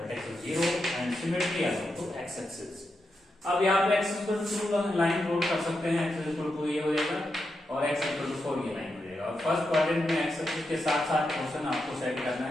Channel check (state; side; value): normal; both; correlation 0.86